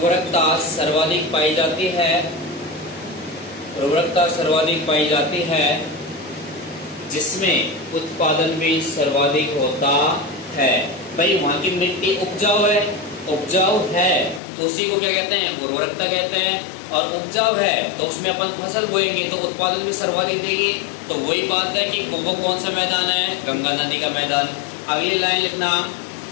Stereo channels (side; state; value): right; drops out; at 14.4 s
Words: सर्वाधिक पाई जाती है, उर्वरकता सर्वाधिक पाई जाती है, जिसमें उत्पादन भी सर्वाधिक होता है। भाई वहां की मिट्टी उपजाऊ है, उपजाऊ है तो उसी को क्या कहते हैं, उर्वरकता कहते हैं। और उपजाऊ है तो उसमें अपन फसल बोएंगे तो उत्पादन भी सर्वाधिक देगी। तो वही बात है कि वो कौन सा मैदान है, गंगा नदी का मैदान। अगली लाइन लिखना,